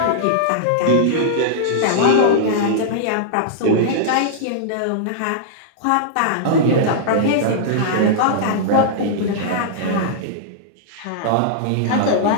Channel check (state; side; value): different; both; correlation -0.02